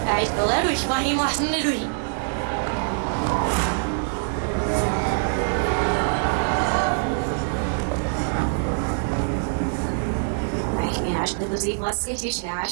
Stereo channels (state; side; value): silent; left; digital silence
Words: Ik wil er ruhig, maar je mag niet ruhig. Ich bin erst nicht so was richtig, ja,